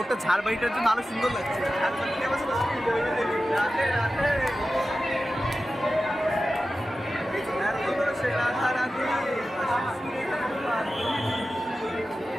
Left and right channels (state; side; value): normal; both; correlation 0.94